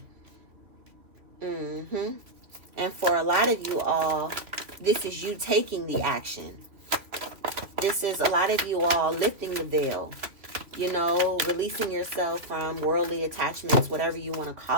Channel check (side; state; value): left; late; 3.0 ms